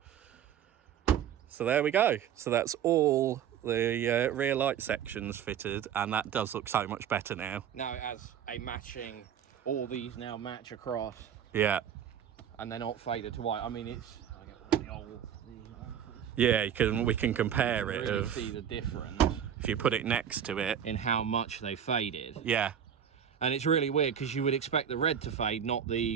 So there we go. So that's all the rear light sections fitted, and that does look so much better now. Now it has a matching, all these now match across. Yeah. And they're not faded to white. I mean, it's, I get the old, yeah, we can compare you it. really see the difference if you put it next to it in how much they faded. Yeah. And it's really weird because you would expect the red to fade, not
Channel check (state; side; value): quieter; left; 8.9 dB